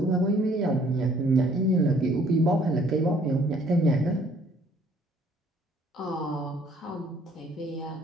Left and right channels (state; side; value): normal; both; correlation 0.60